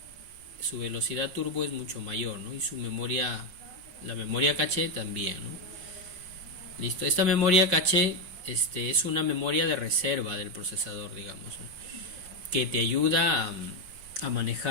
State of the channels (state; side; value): late; left; 5.4 ms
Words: su velocidad turbo es mucho mayor, ¿no? Y su memoria, la memoria caché también, ¿no? Listo, esta memoria caché es una memoria de reserva del procesador, digamos, ¿no? Que te ayuda a